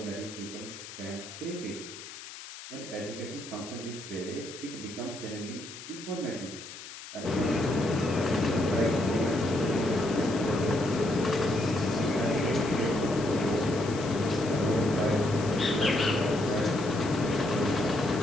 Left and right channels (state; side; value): noise; left; hiss, 13 dB below the sound